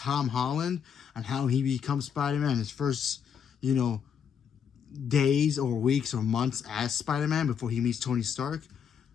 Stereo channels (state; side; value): quieter; right; 7.6 dB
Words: Holland and how he becomes Spider-Man, his first, days or weeks or months as Spider-Man before he meets Tony Stark.